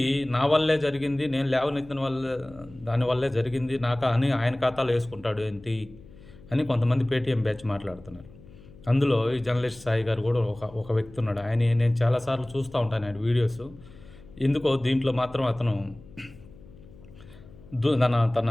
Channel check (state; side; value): noise; left; hum, 21 dB below the sound